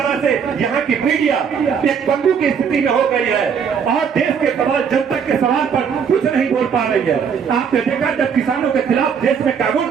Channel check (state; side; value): quieter; left; 6.9 dB